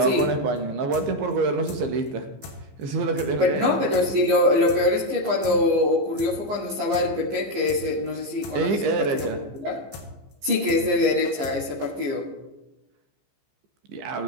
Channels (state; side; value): late; left; 15 ms